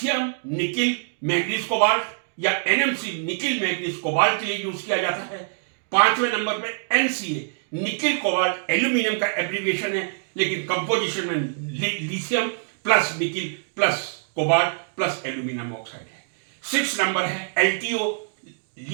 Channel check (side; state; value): left; silent; digital silence